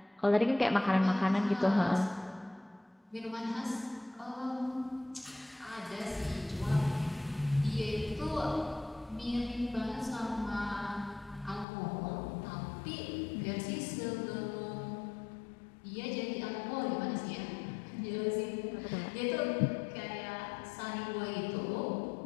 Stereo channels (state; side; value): drops out; right; at 11.7 s